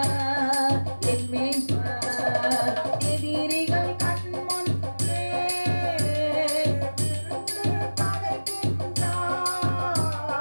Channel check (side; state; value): both; inverted; correlation -1.00